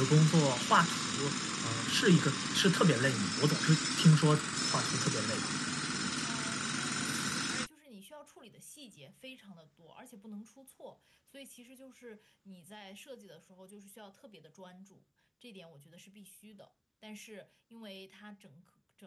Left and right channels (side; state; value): both; identical; correlation 1.00